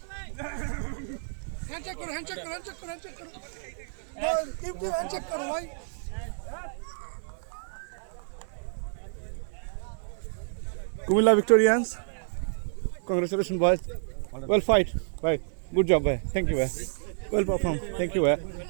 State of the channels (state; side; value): silent; left; digital silence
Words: Comilla Victorians congratulations boys well fight bye good job bye thank you well performed thank